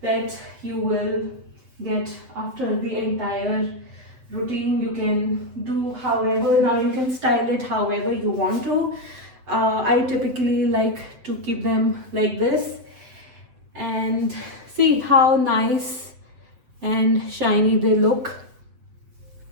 that you will get after the entire routine. You can do however, now you can style it however you want to. I typically like to keep them like this, and see how nice and shiny they look.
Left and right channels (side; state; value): left; late; 7.8 ms